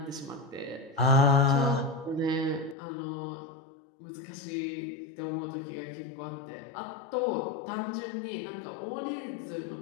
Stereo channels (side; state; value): right; drops out; at 2.8 s